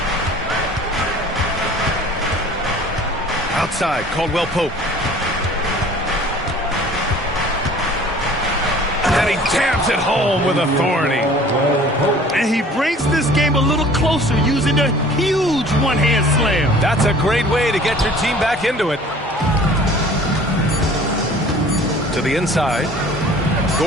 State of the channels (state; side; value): normal; both; correlation 0.49